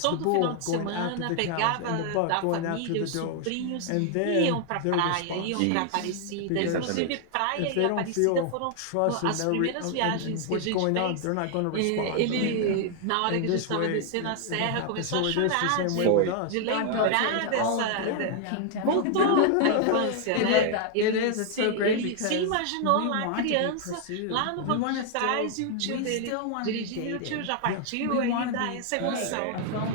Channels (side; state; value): both; different; correlation 0.00